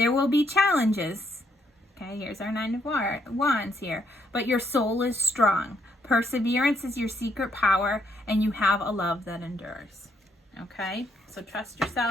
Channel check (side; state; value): both; normal; correlation 0.73